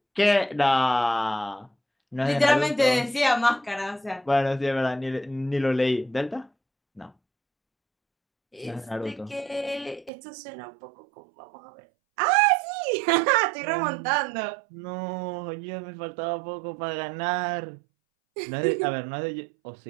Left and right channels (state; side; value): drops out; left; at 10.1 s